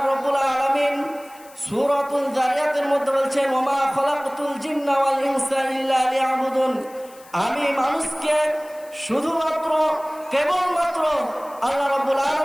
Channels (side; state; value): left; noise; hiss, 24 dB below the sound